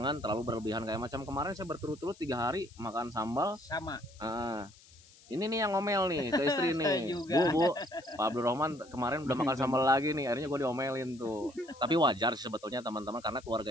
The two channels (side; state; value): left; noise; hiss, 25 dB below the sound